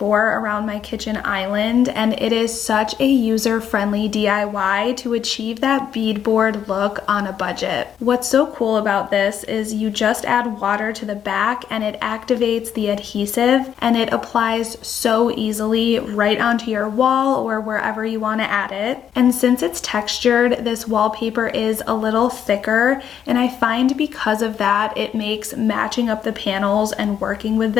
around my kitchen island, and it is such a user-friendly DIY to achieve that beadboard look on a budget. What's so cool about this is you just add water to the back and it activates the adhesive, and it applies so easily right onto your wall or wherever you want to add it. And since it's textured, this wallpaper is a little thicker, and I find because of that it makes matching up the panels and working with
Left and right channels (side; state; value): right; quieter; 8.9 dB